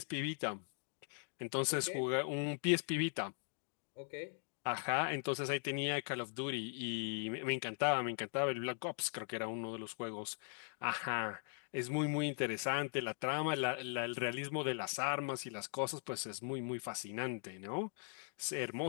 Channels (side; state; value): right; silent; 51 dB below the other